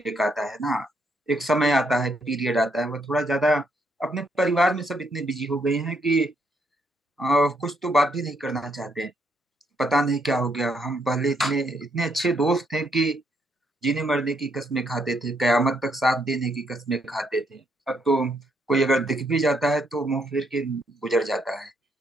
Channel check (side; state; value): both; normal; correlation 0.74